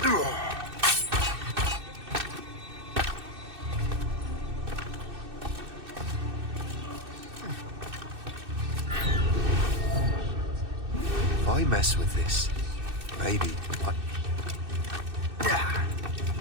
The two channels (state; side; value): late; left; 2.6 ms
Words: If I mess with this, maybe I...